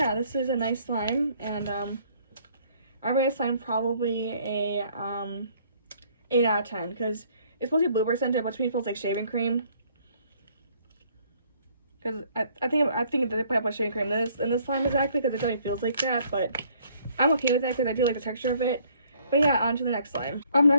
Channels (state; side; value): inverted; both; correlation -0.61